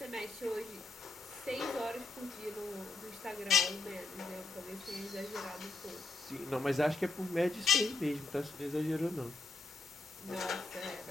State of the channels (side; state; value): right; quieter; 3.4 dB